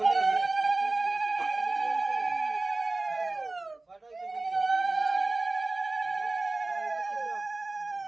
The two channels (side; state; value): left; quieter; 3.2 dB